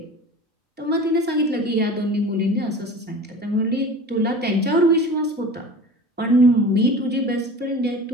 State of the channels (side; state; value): both; normal; correlation 0.37